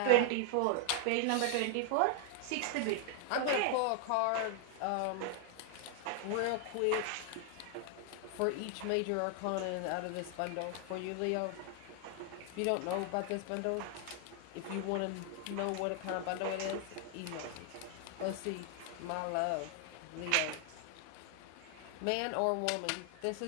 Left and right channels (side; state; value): both; different; correlation 0.00